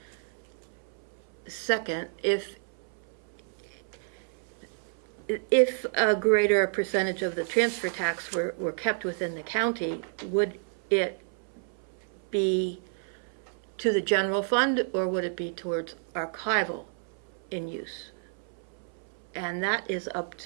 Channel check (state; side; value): silent; left; 58 dB below the other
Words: Second, if a greater percentage of the transfer tax were kept within the county, would it be to the general fund, or would it be towards archival in use? And that is up